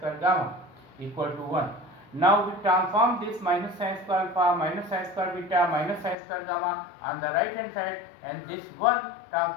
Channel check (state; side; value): drops out; right; at 6.2 s